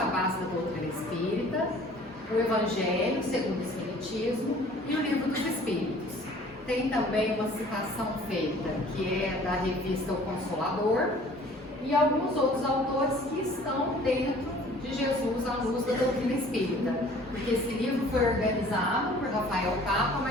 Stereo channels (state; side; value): normal; both; correlation 0.51